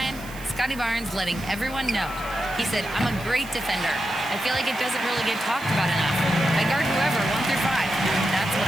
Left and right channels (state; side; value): noise; right; hiss, 18 dB below the sound